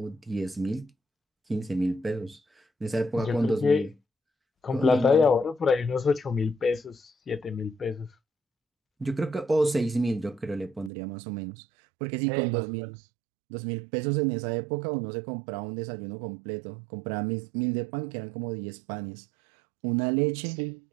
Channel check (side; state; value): left; drops out; at 10.9 s